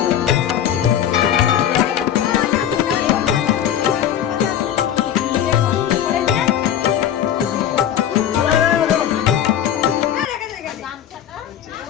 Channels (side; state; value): right; quieter; 10.2 dB